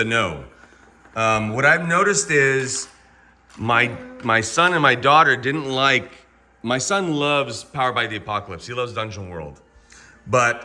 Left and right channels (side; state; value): both; identical; correlation 1.00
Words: no. What I've noticed is my son and my daughter didn't like... My son loves Powered by the Apocalypse. He loves Dungeon World.